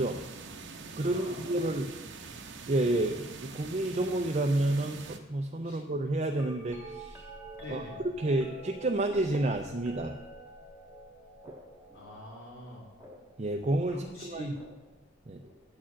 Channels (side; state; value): both; normal; correlation 0.62